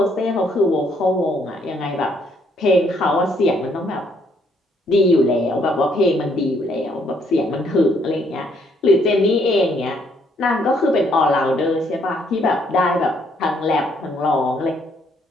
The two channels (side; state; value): both; normal; correlation 0.69